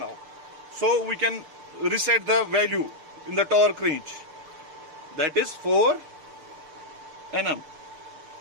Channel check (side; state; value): left; late; 6.8 ms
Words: So we can reset the value in the torque range. That is 4 Nm.